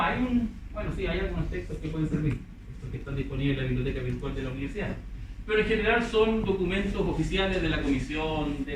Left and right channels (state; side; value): identical; both; correlation 1.00